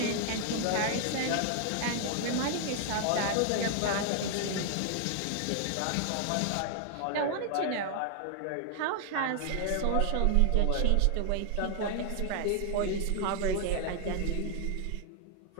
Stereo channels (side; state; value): both; different; correlation 0.00